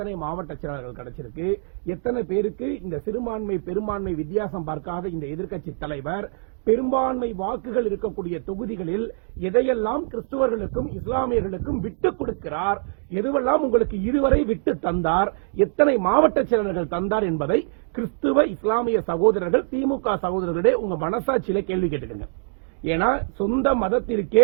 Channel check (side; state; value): left; silent; digital silence